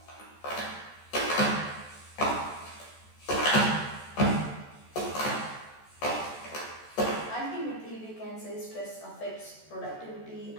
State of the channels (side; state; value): right; late; 14 ms